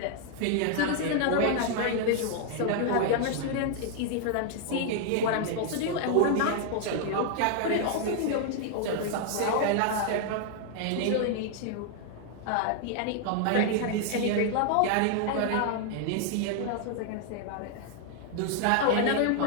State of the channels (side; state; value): both; different; correlation 0.00